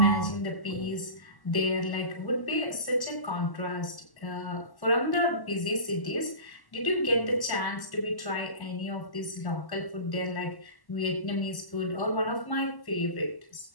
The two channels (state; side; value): late; right; 1.1 ms